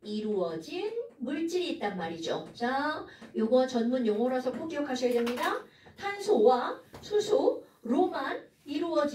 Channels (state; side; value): identical; both; correlation 1.00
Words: 이루어진 물질이 있단 말이죠. 자, 요거 전문 용어라서 꼭 기억하셔야 됩니다. 탄소와 수소로만